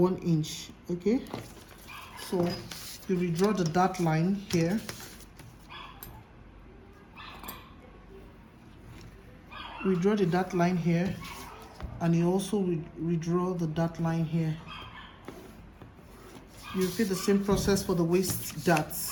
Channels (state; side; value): identical; both; correlation 1.00